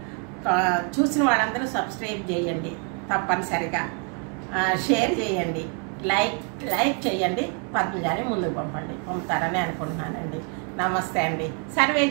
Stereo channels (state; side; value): quieter; left; 39.3 dB